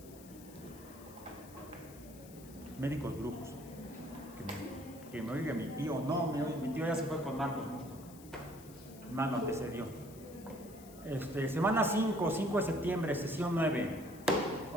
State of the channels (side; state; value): left; noise; hiss, 20 dB below the sound